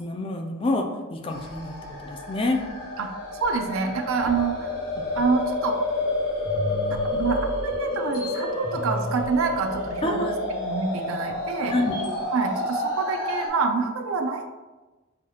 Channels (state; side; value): normal; both; correlation 0.17